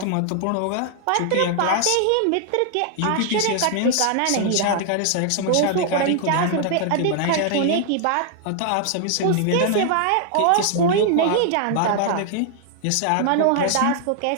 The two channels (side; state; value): both; different; correlation 0.00